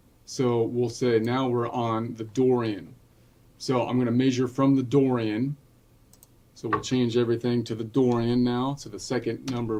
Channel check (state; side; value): identical; both; correlation 1.00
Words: So we'll say now we're on the Dorian. So I'm going to measure from the Dorian. So we'll change everything to the Dorian now. So the second number